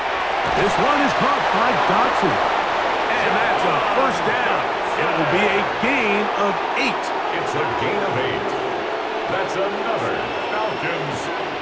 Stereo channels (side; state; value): both; identical; correlation 1.00